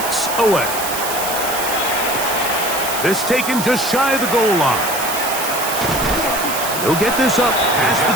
away. This taken just shy of the goal line. They'll get this up past the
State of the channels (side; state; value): right; noise; hiss, 5 dB below the sound